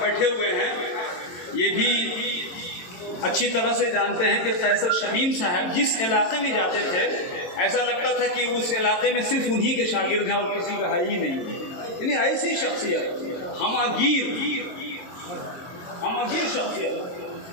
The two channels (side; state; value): right; late; 22 ms